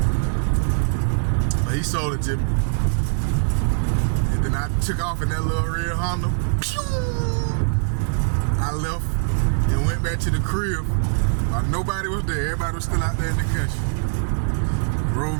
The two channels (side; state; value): left; silent; digital silence